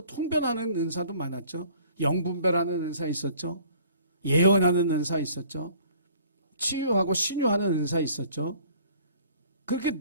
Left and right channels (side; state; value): both; inverted; correlation -0.54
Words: 통변하는 은사도 많았죠. 영분별하는 은사 있었죠. 예언하는 은사 있었죠. 치유하고 신유하는 은사 있었죠. 그렇게